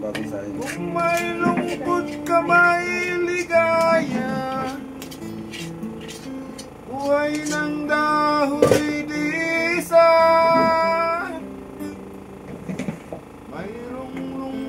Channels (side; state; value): both; identical; correlation 1.00